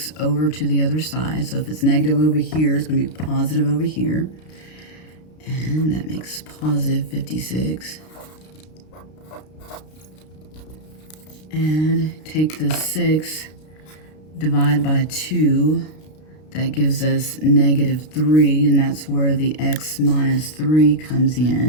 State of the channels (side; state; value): right; late; 32 ms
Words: over to the other side. So if it's negative over here, it's going to be positive over here. And that makes positive 56. And take the 6, divide by 2. That gives us negative 3, and that's where the x minus 3 comes